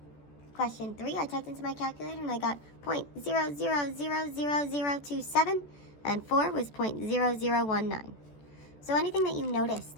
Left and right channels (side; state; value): right; late; 14 ms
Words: Question 3, I typed into my calculator and I got 0.000027, and 4 was 0.0019. So anything that you noticed